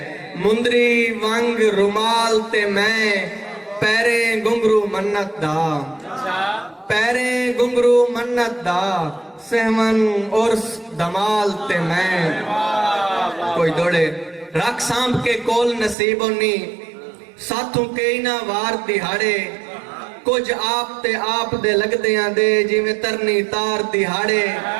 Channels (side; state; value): left; drops out; at 16.0 s